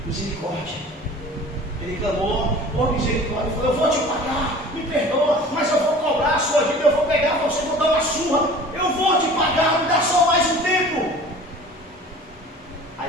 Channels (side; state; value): both; normal; correlation 0.43